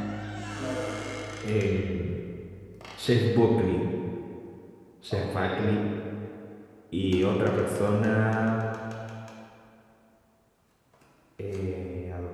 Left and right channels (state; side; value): identical; both; correlation 1.00